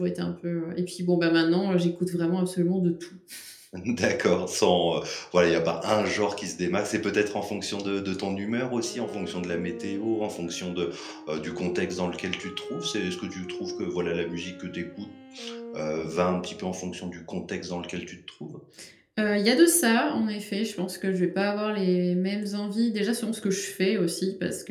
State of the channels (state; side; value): identical; both; correlation 1.00